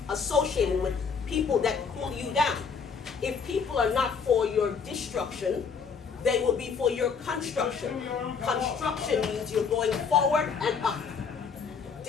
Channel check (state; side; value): quieter; right; 5.8 dB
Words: associated with people that pull you down. If people are not for your destruction, they will be for your construction. Construction means you're going forward and up.